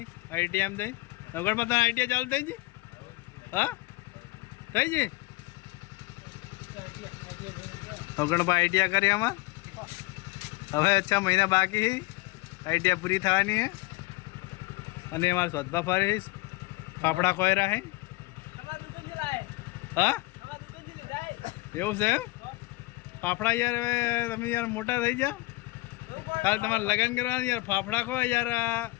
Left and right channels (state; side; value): quieter; right; 22.3 dB